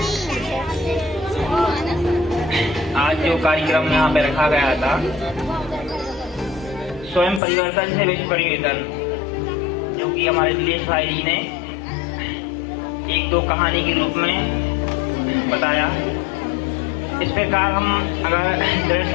आज जो कार्यक्रम यहाँ पे रखा गया था, स्वयं परिवर्तन से विश्व परिवर्तन, जो कि हमारे नीलेश भाई जी ने एक दो कहानी के रूप में बताया। इस प्रकार हम अगर दृढ़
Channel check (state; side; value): drops out; right; at 7.4 s